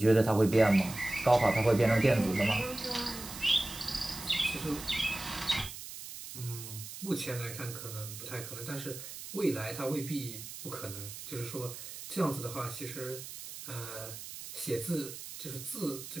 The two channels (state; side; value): noise; right; hiss, 11 dB below the sound